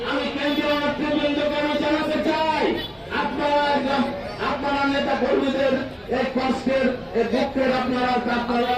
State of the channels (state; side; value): identical; both; correlation 1.00